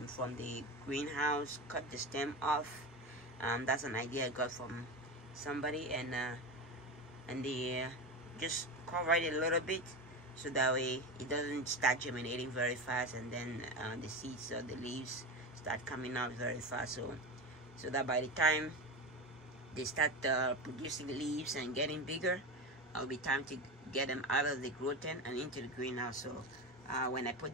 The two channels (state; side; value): normal; both; correlation 0.22